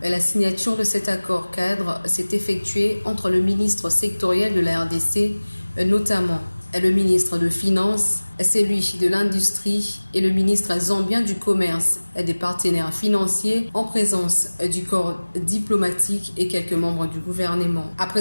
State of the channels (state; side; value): inverted; both; correlation -1.00